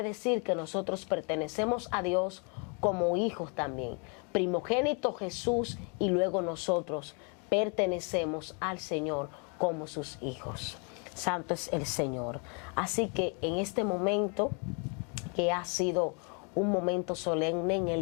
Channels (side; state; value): right; quieter; 36.5 dB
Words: decir que nosotros pertenecemos a Dios como hijos también. Primogénito Jesús y luego nosotros pertenecemos al Señor como sus hijos. Santo es el Señor. Así que en este momento, que ha sido un momento solemne en